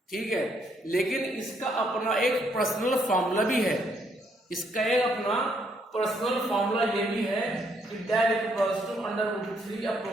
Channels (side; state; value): both; normal; correlation 0.72